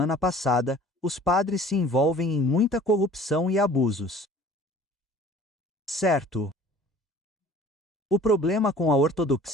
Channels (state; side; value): normal; both; correlation 0.48